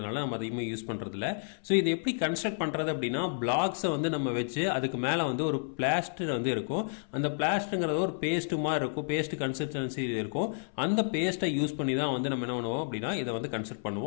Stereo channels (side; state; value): right; silent; 57 dB below the other